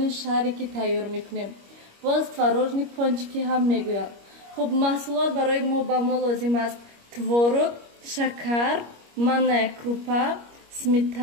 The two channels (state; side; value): late; left; 25 ms